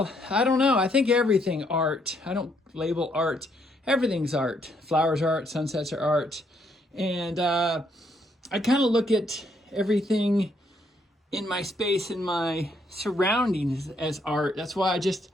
I don't know. I think everything art. I don't label art. Everything's art. Flowers are art, sunsets are art. And I kind of look at everything in my space, in my surroundings as art. That's why I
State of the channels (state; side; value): normal; both; correlation 0.72